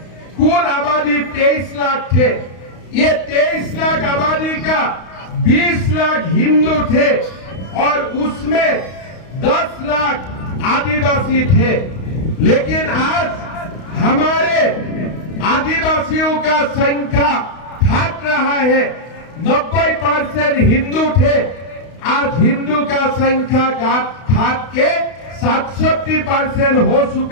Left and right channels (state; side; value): late; right; 32 ms